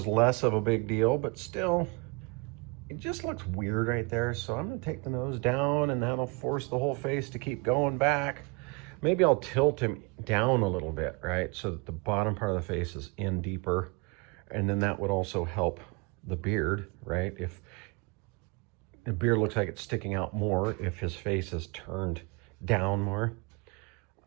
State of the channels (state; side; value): quieter; left; 29.0 dB